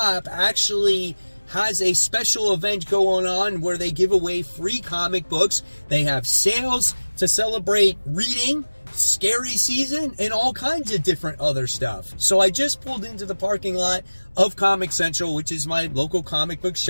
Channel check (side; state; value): both; inverted; correlation -1.00